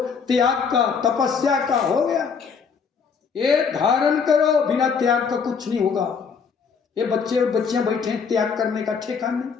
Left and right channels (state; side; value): quieter; right; 6.0 dB